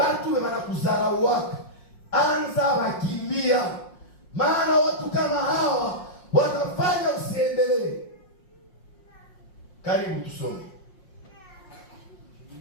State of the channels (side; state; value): right; late; 5.6 ms